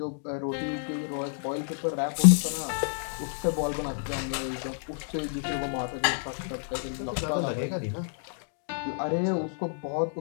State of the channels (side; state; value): right; silent; digital silence